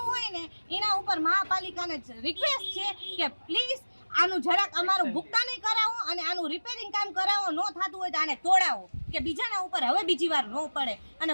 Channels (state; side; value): inverted; both; correlation -1.00